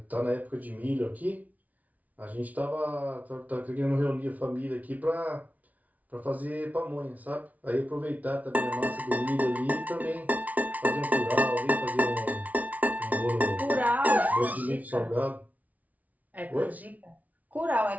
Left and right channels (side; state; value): left; late; 0.072 ms